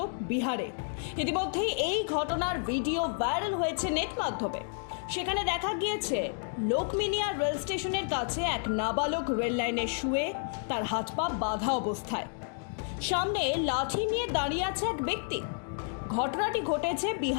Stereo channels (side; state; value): right; silent; 57 dB below the other